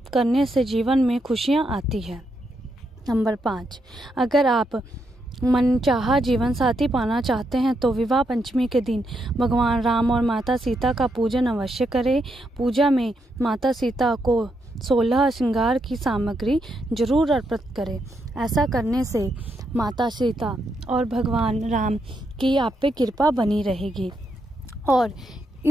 करने से जीवन में खुशियां आती है। नंबर 5, अगर आप मनचाहा जीवन साथी पाना चाहते हैं तो विवाह पंचमी के दिन भगवान राम और माता सीता का पूजन अवश्य करें। पूजा में माता सीता को 16 श्रृंगार की सामग्री जरूर अर्पित करें। ऐसा करने से माता सीता और भगवान राम की आप पे कृपा बनी रहेगी। और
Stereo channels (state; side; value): normal; both; correlation 0.80